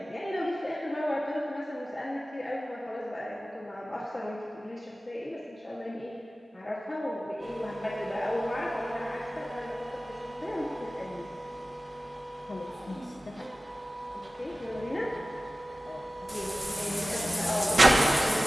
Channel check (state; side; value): normal; both; correlation 0.97